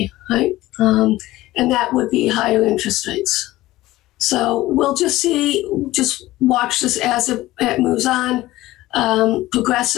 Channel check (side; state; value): right; quieter; 17.0 dB